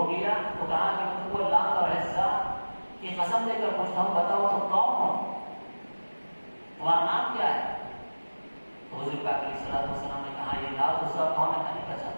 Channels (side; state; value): both; inverted; correlation -1.00